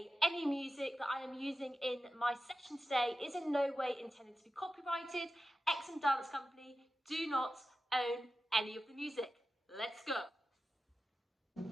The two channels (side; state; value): both; normal; correlation 0.93